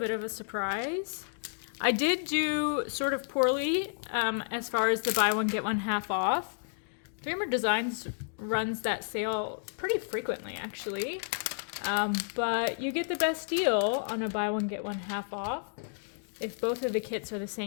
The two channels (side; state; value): right; silent; digital silence